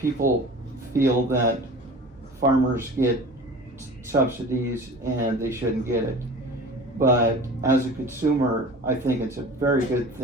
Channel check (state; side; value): normal; both; correlation 0.39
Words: feel that farmers get subsidies and they shouldn't get it. But as a consumer, I think it's a very good